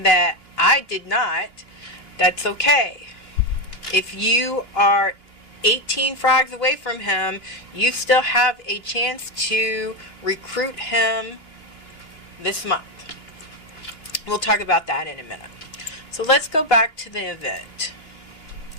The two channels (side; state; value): right; late; 3.1 ms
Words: that I did not, that's okay. If you are 18 frags away from him, you still have a chance to recruit him this month. We'll talk about that in a minute. So let's go back to the event.